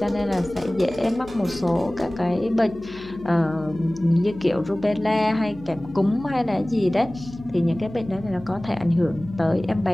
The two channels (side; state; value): left; noise; hum, 20 dB below the sound